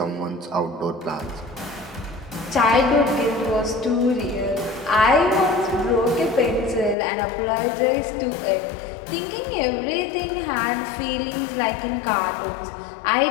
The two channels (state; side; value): drops out; right; at 7.0 s